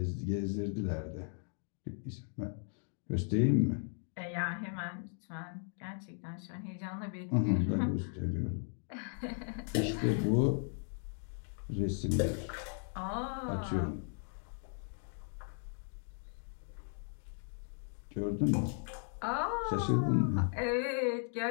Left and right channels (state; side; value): silent; right; 53 dB below the other